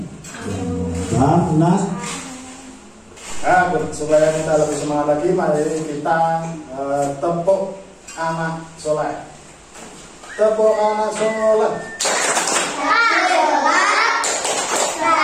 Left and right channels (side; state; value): both; identical; correlation 1.00